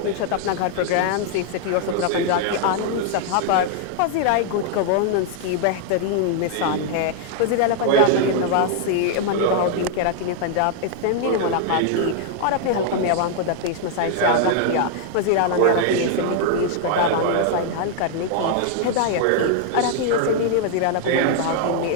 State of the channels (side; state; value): both; different; correlation 0.00